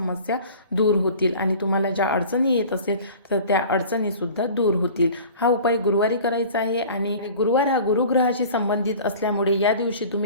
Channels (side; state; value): both; inverted; correlation -0.42